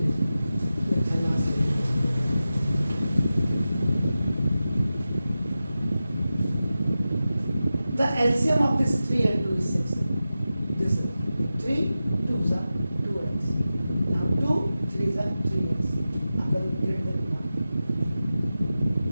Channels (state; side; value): inverted; both; correlation -0.93